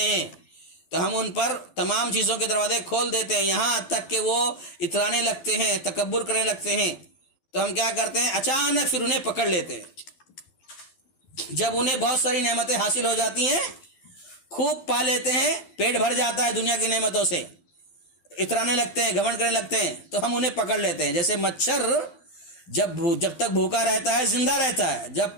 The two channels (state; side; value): late; right; 12 ms